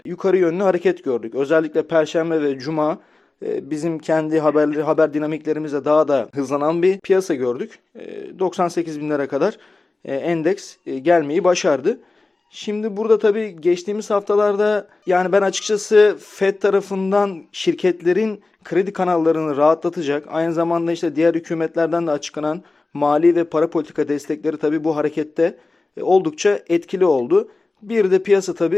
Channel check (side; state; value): right; quieter; 3.4 dB